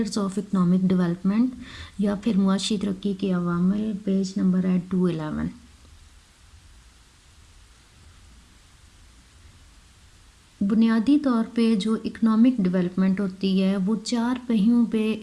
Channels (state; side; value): identical; both; correlation 1.00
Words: آف اکنامک ڈیولپمنٹ یا پھر معاشی ترقی کے عوامل. پیج نمبر ہے 211. بنیادی طور پہ جو اکنامک ڈیولپمنٹ ہوتی ہے وہ 4 پہیوں پہ